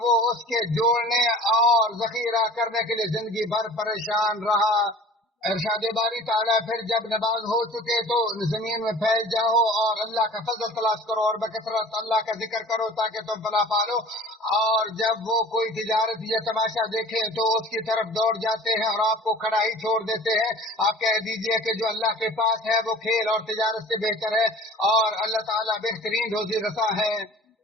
وہ اس کے جوڑنے اور ذخیرہ کرنے کے لیے زندگی بھر پریشان رہا۔ ارشاد باری تعالیٰ، پھر جب نماز ہو چکے تو زمین میں پھیل جاؤ اور اللہ کا فضل تلاش کرو اور بکثرت اللہ کا ذکر کرو تاکہ تم فلاح پالو، اور جب وہ کوئی تجارت یا تماشا دیکھیں تو اس کی طرف دوڑ جاتے ہیں اور آپ کو کھڑا ہی چھوڑ دیتے ہیں۔ آپ کہہ دیجئے کہ جو اللہ کے پاس ہے وہ کھیل اور تجارت سے بہتر ہے، اور اللہ تعالیٰ بہترین روزی رساں ہے۔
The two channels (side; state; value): both; normal; correlation 0.44